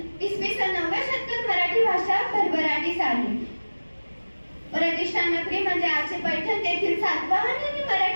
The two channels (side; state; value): both; inverted; correlation -1.00